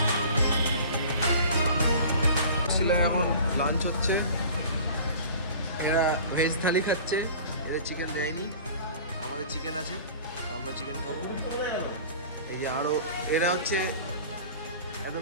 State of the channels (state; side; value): inverted; both; correlation -0.42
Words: ঘাটশিলায় এখন লাঞ্চ হচ্ছে। এরা ভেজ থালি খাচ্ছে, এরা চিকেন দেয়নি, আমাদের চিকেন আছে, আমরা চিকেন খাবো। এই যে আরও এরা হচ্ছে